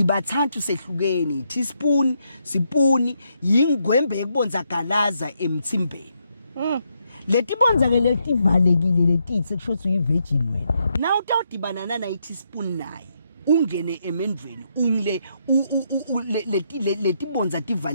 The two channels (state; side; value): inverted; both; correlation -0.78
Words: sehlukene teaspoon sipuni yingwembe yekubonza galaza emthimbeni letibonza ke letivalekile letithi kusho ukuthi uyivirgin wena na utawudibana na teaspoon naye ungene emendweni ungile letibonza